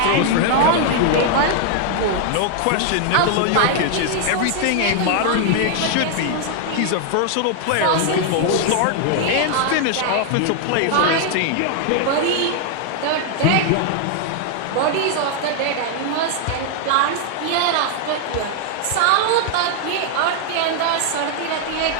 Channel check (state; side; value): different; both; correlation 0.00